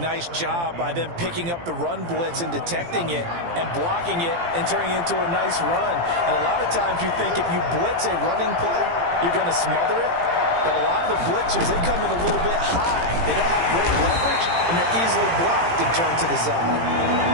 job by them picking up the run blitz and detecting it and blocking it and turning it into a nice run. And a lot of times you think if you blitz a running play, you're going to smother it. But a lot of the blitzers, they come in a little bit high. They don't have great leverage, and they're easily blocked and turned to the side.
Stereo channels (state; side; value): late; left; 17 ms